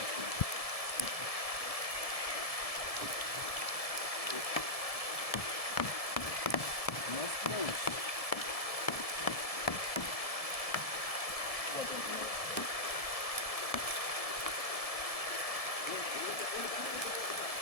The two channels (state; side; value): late; right; 1.7 ms